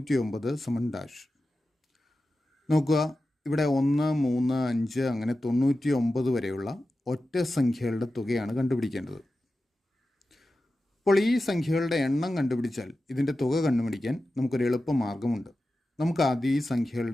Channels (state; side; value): normal; both; correlation 0.93